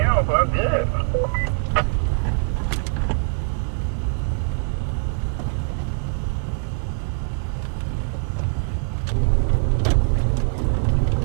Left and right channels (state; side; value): silent; left; 64 dB below the other